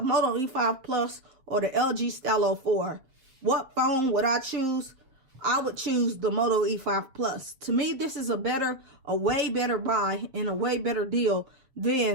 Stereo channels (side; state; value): left; late; 7.0 ms